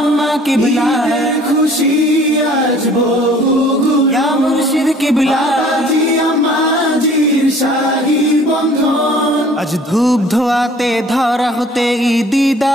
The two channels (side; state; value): both; normal; correlation 0.52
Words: কিবলা ঈদের খুশি আজ বহুগুণ, ইয়া মুর্শিদ কিবলা বাবাজি আম্মাজির শাহী বন্ধন। আজ ধূপ ধোয়াতে ধরা হতে ঈদি